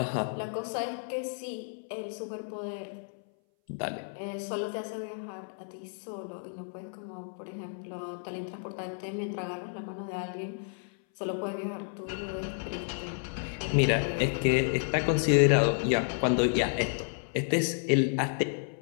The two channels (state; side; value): silent; right; 57 dB below the other